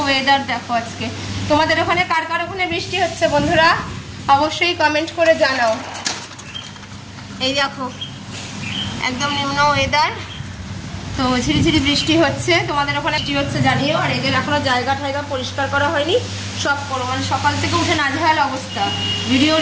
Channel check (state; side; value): identical; both; correlation 1.00